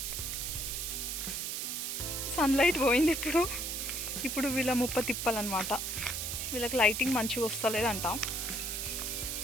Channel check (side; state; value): right; noise; hiss, 3 dB below the sound